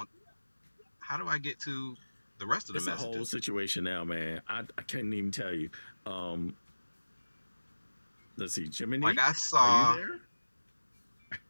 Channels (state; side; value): inverted; both; correlation -1.00